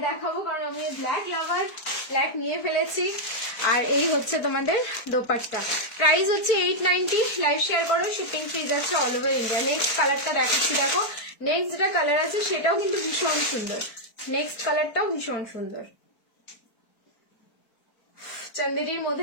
দেখাবো কারণ আমি ব্ল্যাক লাভার, ব্ল্যাক নিয়ে ফেলেছি। আর এই হচ্ছে তোমাদের দোপাট্টা, প্রাইস হচ্ছে 890, লাইভ শেয়ার করো শিপিং ফ্রি যাচ্ছে অল ওভার ইন্ডিয়া। নেক্সট কালারটা দেখাচ্ছি দেখো, নেক্সট যেটা কালার আছে সেটাও কিন্তু ভীষণ সুন্দর, নেক্সট কালারটাও ভীষণ সুন্দর। চান্দেরির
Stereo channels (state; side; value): late; right; 4.5 ms